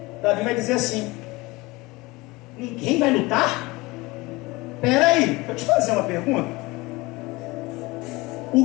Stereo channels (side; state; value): right; quieter; 22.5 dB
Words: Davi vai dizer assim: ninguém vai lutar? Peraí, deixa eu te fazer uma pergunta.